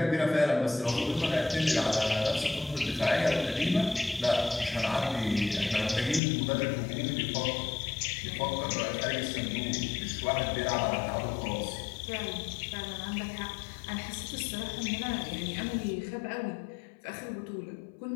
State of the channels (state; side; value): drops out; right; at 6.2 s